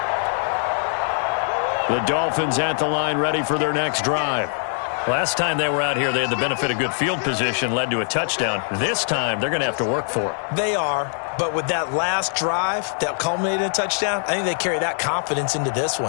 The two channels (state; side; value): silent; right; digital silence